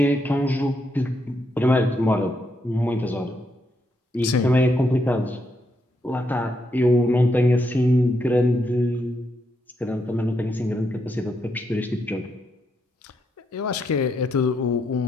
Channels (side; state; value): both; normal; correlation 0.79